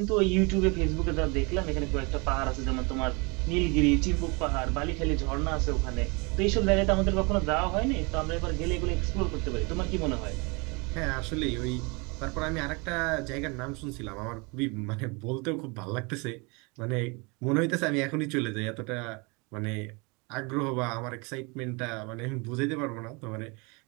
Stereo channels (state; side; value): quieter; left; 29.5 dB